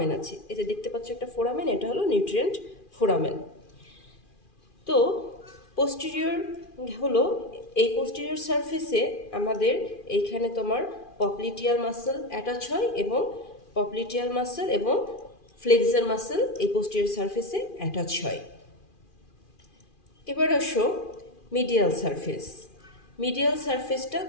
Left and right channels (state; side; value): late; right; 2.4 ms